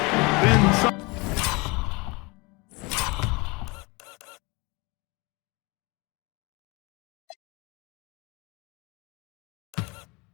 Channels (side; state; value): right; quieter; 26.4 dB